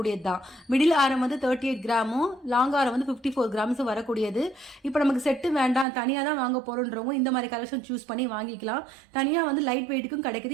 தான். மிடில் ஆரம் வந்து 38 கிராமும், லாங் ஆரம் வந்து 54 கிராம்ஸும் வரக்கூடியது. இப்போ நமக்கு செட்டு வேண்டாம், தனியாக தான் வாங்க போகிறோன்றவங்க இந்த மாதிரி கலெக்ஷன் சூஸ் பண்ணி வாங்கிக்கலாம். தனியாக வந்து லைட் வெயிட்டுக்கும்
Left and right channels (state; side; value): drops out; left; at 5.9 s